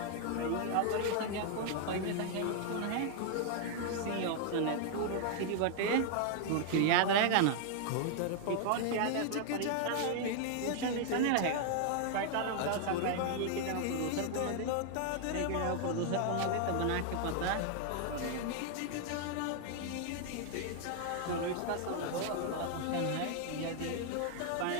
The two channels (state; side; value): different; both; correlation 0.00